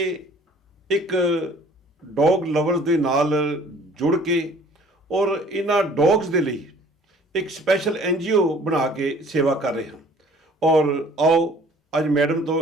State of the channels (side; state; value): both; normal; correlation 0.53